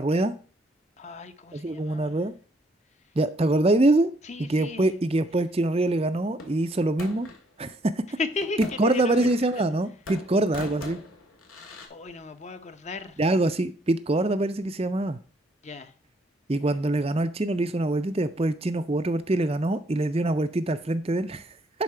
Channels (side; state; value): both; normal; correlation 0.68